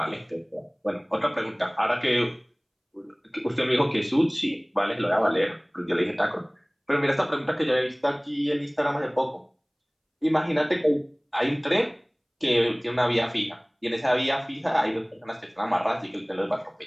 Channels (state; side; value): identical; both; correlation 1.00